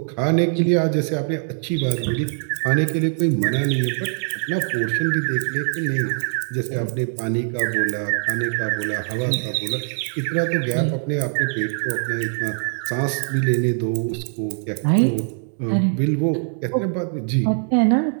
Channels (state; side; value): silent; left; digital silence